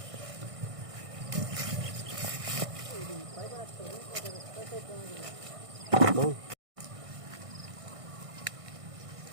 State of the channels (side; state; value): left; late; 1.6 ms